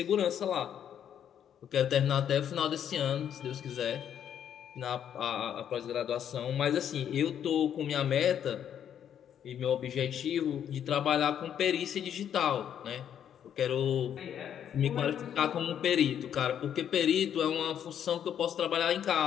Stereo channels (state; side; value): quieter; right; 9.3 dB